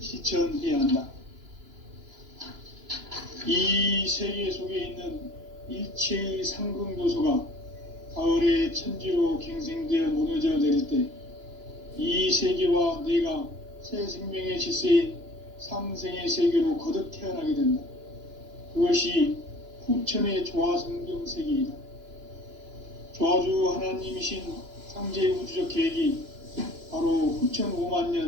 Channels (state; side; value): late; left; 2.9 ms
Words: 한다. 이 세계 속에 있는 일체의 상승도소가 가을의 천지로 갱생되어 무너져 내릴 때 이 세계와 내가 새 생명의 질서인 상생의 세계로 거듭 태어나게 된다. 그것이 후천의 조화성경 세계이다. 조화주 하나님이신 상제 우주적 계획이 바로 후천 5만